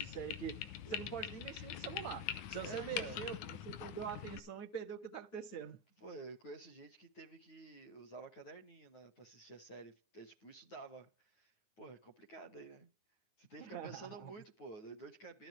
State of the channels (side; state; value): right; late; 9.6 ms